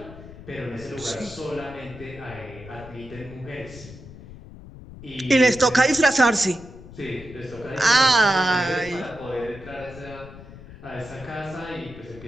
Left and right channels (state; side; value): noise; left; rumble, 16 dB below the sound